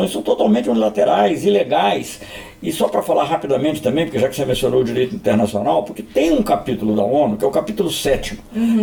são totalmente unilaterais, ilegais. E só para falar rapidamente também, porque já que você mencionou o direito internacional, porque tem um capítulo da ONU, que é o capítulo 7º,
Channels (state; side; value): identical; both; correlation 1.00